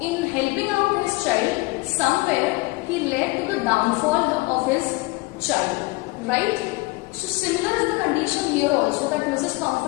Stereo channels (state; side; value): quieter; right; 23.7 dB